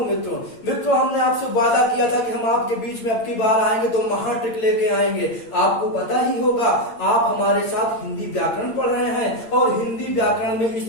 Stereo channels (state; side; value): late; right; 8.8 ms